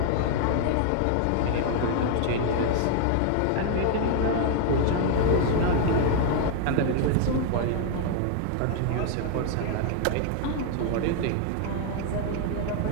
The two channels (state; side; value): different; both; correlation 0.00